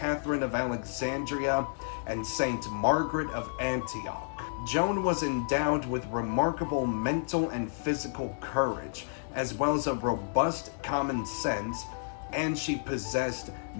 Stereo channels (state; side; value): silent; right; digital silence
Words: of Alexandria, and Saint Margaret of Antioch. Joan was endowed with remarkable mental and physical courage, as well as a robust common sense, and she possessed